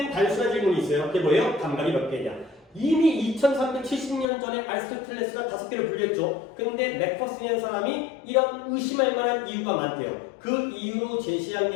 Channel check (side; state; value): right; drops out; at 4.2 s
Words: 단순한 질문이 있어요. 그게 뭐예요? 감각이 몇 개냐? 이미 2370년 전에 아리스토텔레스가 5개를 분류했죠. 근데 맥퍼슨이라는 사람이 이런 의심할 만한 이유가 많대요. 그 이유로 제시한